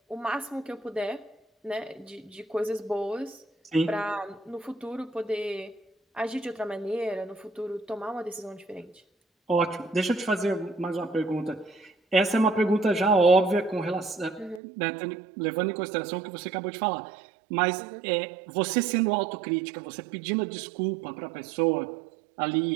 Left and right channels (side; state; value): left; drops out; at 14.6 s